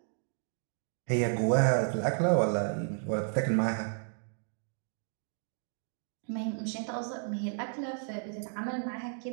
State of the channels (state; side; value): silent; left; 56 dB below the other